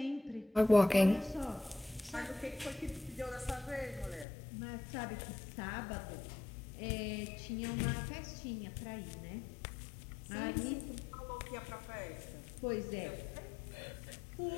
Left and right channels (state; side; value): drops out; right; at 4.2 s